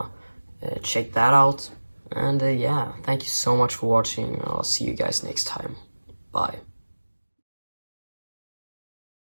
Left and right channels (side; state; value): both; inverted; correlation -1.00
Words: check that out. And yeah, thank you so much for watching. I'll see you guys next time. Bye.